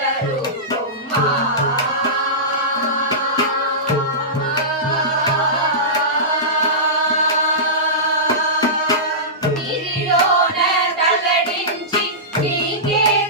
நீரிలోన తల్లడించి నీకే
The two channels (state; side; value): normal; both; correlation -0.17